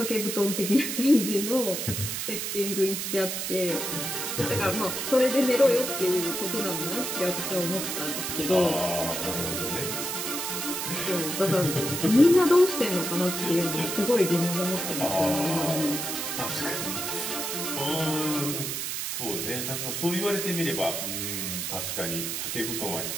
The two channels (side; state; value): right; noise; hiss, 3 dB below the sound